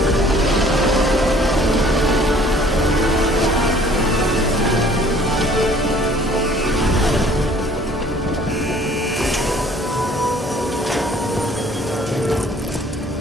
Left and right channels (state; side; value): normal; both; correlation 0.56